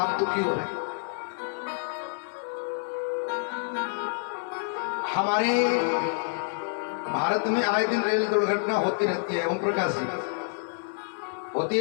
दुखी हो रहे हैं? हमारे भारत में आए दिन रेल दुर्घटना होती रहती है। ओम प्रकाश जी, होती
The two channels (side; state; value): right; silent; digital silence